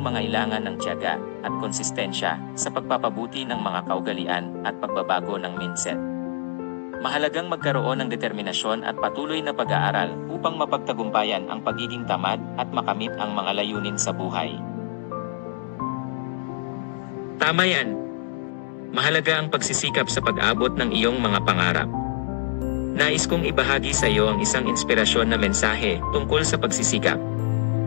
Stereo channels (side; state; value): right; silent; digital silence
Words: ng tiyaga at konsistensya sa pagpapabuti ng mga kaugalian at pagbabago ng mindset. Mahalagang magkaroon ng determinasyon at patuloy na pag-aaral upang mapagtagumpayan ang pagiging tamad at makamit ang mga layunin sa buhay. Tama yan. Mahalaga ang pagsisikap sa pag-abot ng iyong mga pangarap. Nais kong ibahagi sa iyo ang isang inspirasyon na mensahe tungkol sa pagsisikap.